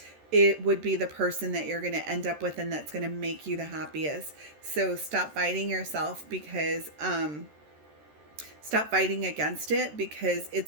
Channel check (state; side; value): late; left; 13 ms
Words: it would be the person that you're going to end up with, and that's going to make you the happiest. So stop fighting yourself, because stop fighting against it, because